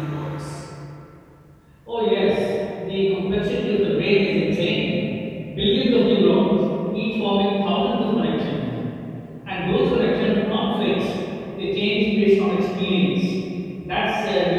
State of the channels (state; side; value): identical; both; correlation 1.00